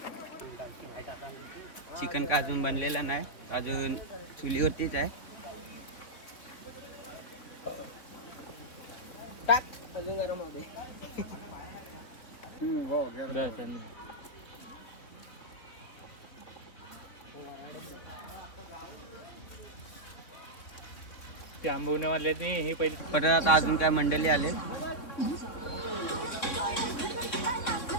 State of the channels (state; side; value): late; right; 3.7 ms